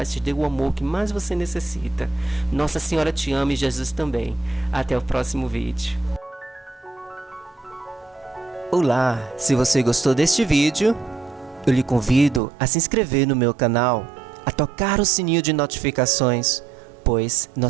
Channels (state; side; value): drops out; left; at 12.4 s